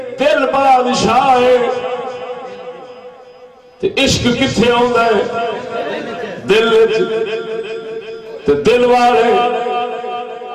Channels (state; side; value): identical; both; correlation 1.00